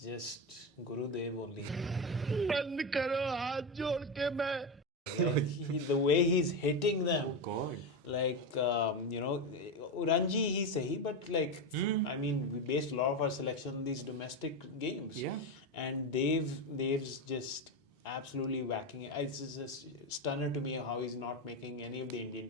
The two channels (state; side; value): normal; both; correlation 0.14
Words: just Guru Dev only. Like, the way he's hitting them. God. Like, Ranji, he's sahi, but like, I mean, we based a lot of our selection on these domestic games. Yeah. And Dev's just absolutely whacking it. It's just stunner to me how he's not making any of the Indian